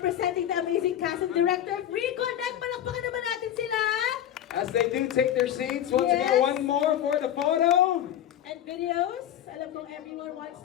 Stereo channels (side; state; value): right; quieter; 10.9 dB